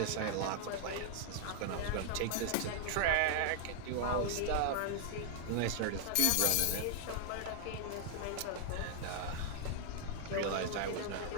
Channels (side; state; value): both; different; correlation 0.00